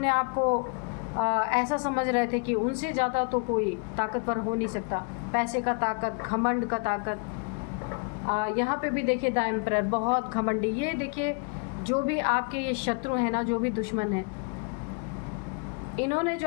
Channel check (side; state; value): right; quieter; 35.2 dB